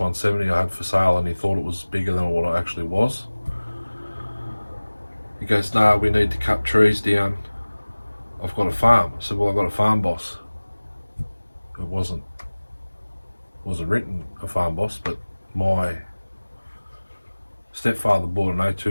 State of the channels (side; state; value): both; inverted; correlation -1.00